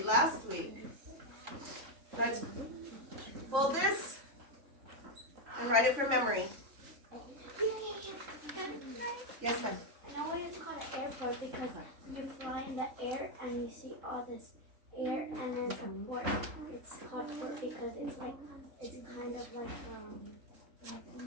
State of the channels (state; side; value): late; left; 3.5 ms